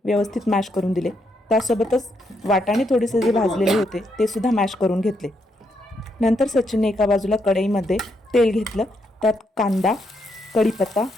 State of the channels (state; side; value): normal; both; correlation 0.78